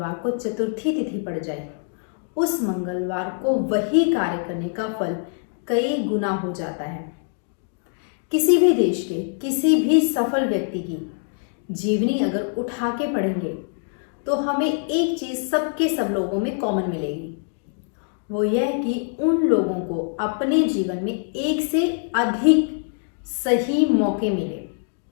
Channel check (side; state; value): right; silent; 63 dB below the other